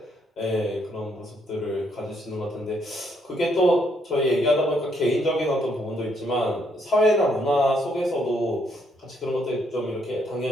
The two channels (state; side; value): normal; both; correlation 0.72